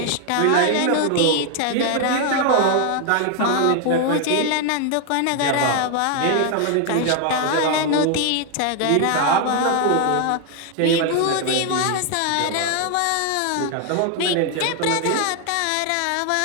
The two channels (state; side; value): different; both; correlation 0.00